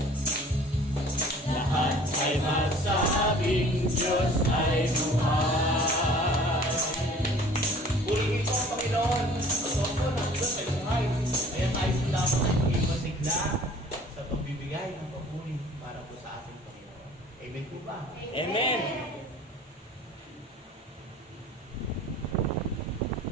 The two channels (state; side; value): normal; both; correlation 0.50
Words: Lahat ay magsabing Diyos ay buhay. Purihin ko ang Panginoon. Pagkaw ko ng Diyos ay buhay. Kaya tayo po dapat ay maging masigla sa pagbibigay ng papuri para po sa ating Panginoon. Amen po ba? Amen.